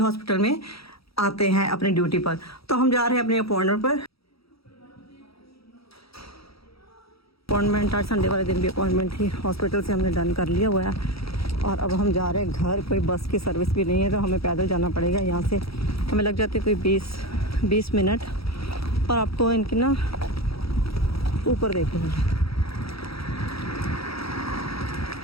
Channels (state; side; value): late; right; 0.76 ms